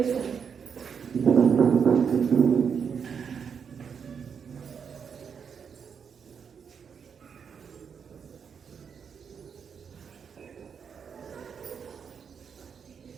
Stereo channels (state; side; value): quieter; left; 6.8 dB